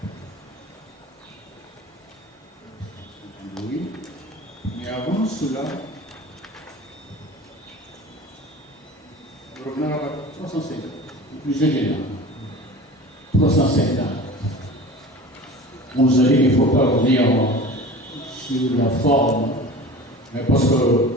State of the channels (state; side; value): normal; both; correlation 0.37